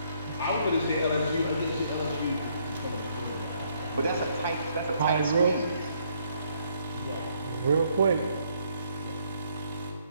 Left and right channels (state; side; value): inverted; both; correlation -0.69